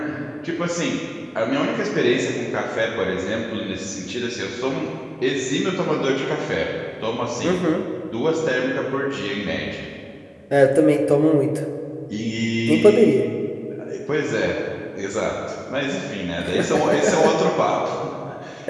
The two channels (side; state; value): both; identical; correlation 1.00